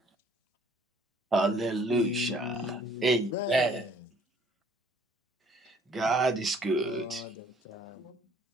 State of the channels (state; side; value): normal; both; correlation 0.58